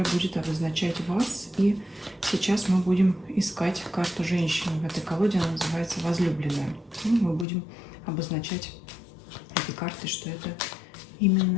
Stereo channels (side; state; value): right; drops out; at 7.5 s